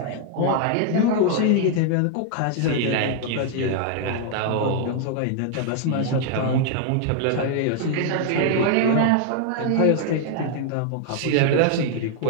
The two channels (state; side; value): different; both; correlation 0.00